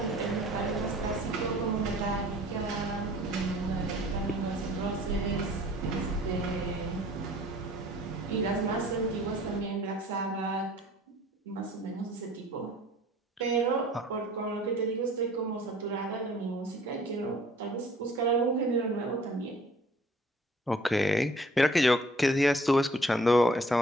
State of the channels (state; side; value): normal; both; correlation 0.53